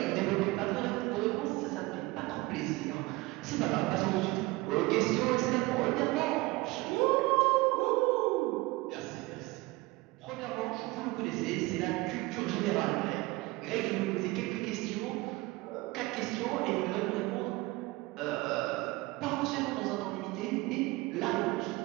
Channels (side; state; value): left; quieter; 21.5 dB